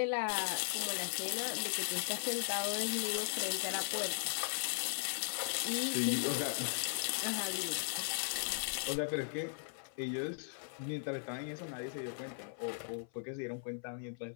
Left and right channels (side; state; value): right; silent; 52 dB below the other